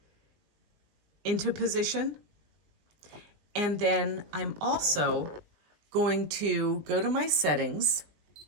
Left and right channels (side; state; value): left; late; 19 ms